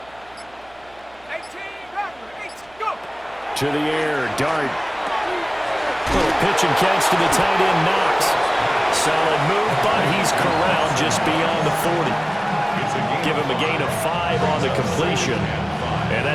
To the air, Dart. Little pitch and catch to the tight end, Knox. Solid move, but he's corralled just beyond the 40. Give him a gain of 5 on the completion, and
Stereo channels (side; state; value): right; noise; hum, 28 dB below the sound